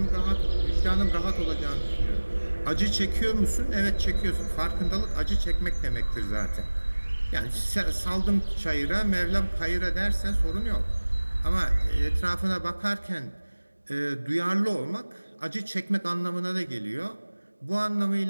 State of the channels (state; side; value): inverted; both; correlation -1.00